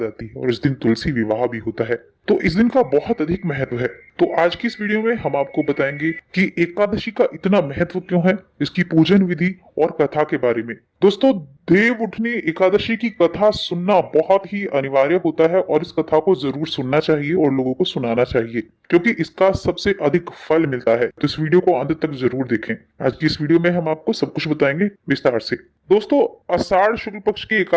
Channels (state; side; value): identical; both; correlation 1.00